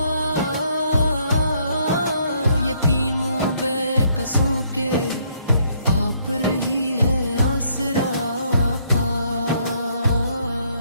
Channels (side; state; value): both; inverted; correlation -0.69